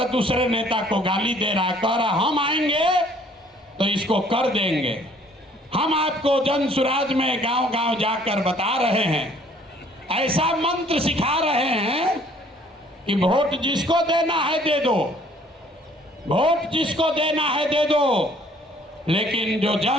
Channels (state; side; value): normal; both; correlation 0.58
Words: दूसरे नेता को गाली दे रहा है, कह रहा हम आएंगे तो इसको कर देंगे। हम आपको जन सुराज में गांव गांव जाकर बता रहे हैं, ऐसा मंत्र सिखा रहे हैं कि वोट जिसको देना है दे दो, वोट जिसको देना है दे दो, लेकिन जो